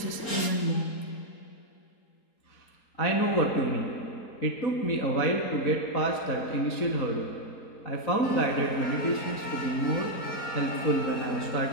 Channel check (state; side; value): late; right; 4.3 ms